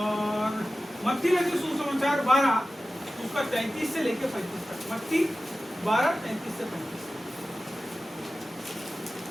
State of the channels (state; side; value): normal; both; correlation 0.95